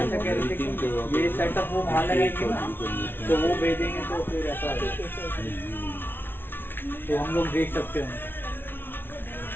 कह रहे थे कि ये सेटअप वो वहाँ लगाएंगे ना तो वो भेजेंगे तो फिर ऐसा तो हम लोग देख सकते हैं।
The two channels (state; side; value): late; right; 0.10 ms